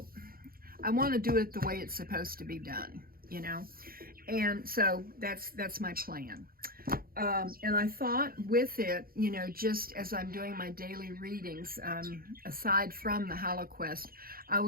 I want to do it the way it's supposed to be done, you know, and so that's my plan. And I thought with it, you know, just as I'm doing my daily readings, aside from the Hollow Quest, I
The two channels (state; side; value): late; left; 0.43 ms